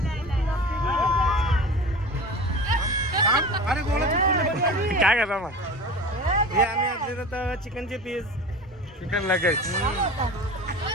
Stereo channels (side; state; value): both; normal; correlation 0.35